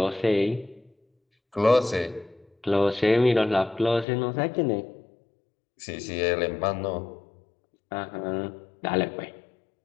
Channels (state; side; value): drops out; right; at 4.0 s